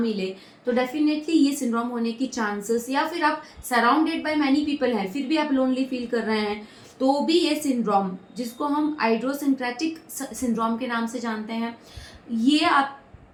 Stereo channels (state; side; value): identical; both; correlation 1.00